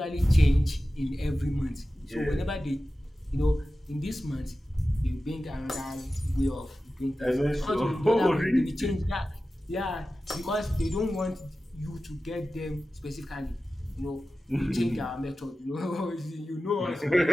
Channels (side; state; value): both; normal; correlation 0.94